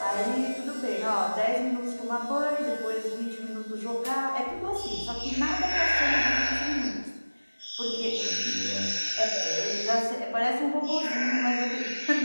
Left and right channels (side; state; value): both; inverted; correlation -1.00